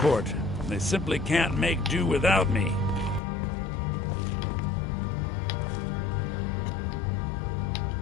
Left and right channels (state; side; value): drops out; right; at 3.2 s